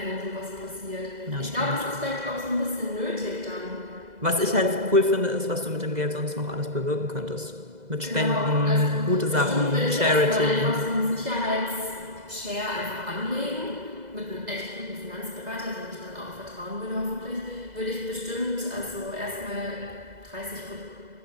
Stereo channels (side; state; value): left; late; 2.0 ms